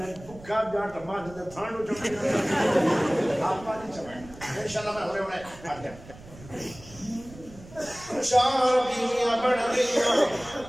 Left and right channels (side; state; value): right; noise; rumble, 19 dB below the sound